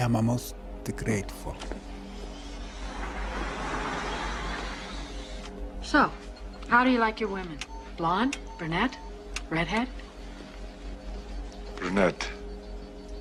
most grateful. So, how do you like your women? Blonde? Brunette? Redhead? Brunette.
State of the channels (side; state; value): both; identical; correlation 1.00